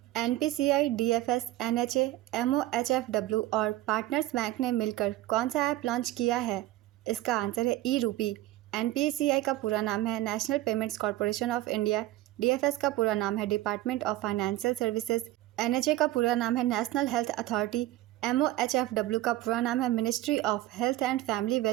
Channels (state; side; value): quieter; left; 15.8 dB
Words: NPCI, DFS, NHA, MOHFW और पार्टनर्स बैंक ने मिलकर कौन सा ऐप लॉन्च किया है? इसका आंसर है ई-रूपी। NPCI का पूरा नाम है national payments corporation of India. DFS का पूरा नाम है department of financial services. NHA का पूरा नाम है नेशनल हेल्थ अथॉरिटी। MOHFW का पूरा नाम है ministry of health and family